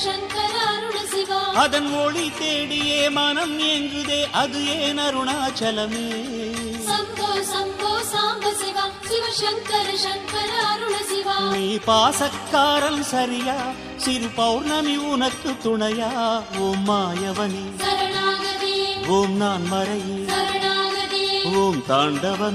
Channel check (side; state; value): both; identical; correlation 1.00